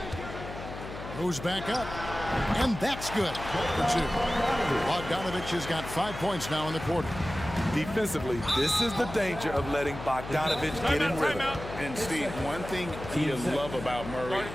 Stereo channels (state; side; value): noise; left; hum, 10 dB below the sound